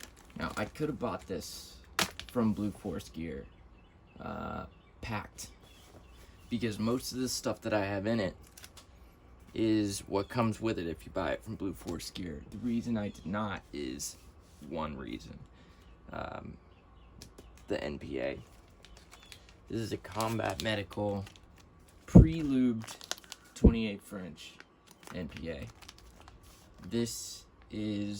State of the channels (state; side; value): identical; both; correlation 1.00